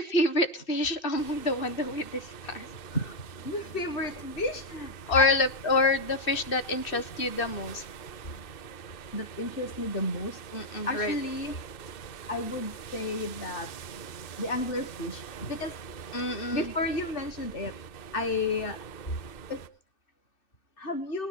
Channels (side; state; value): right; late; 2.6 ms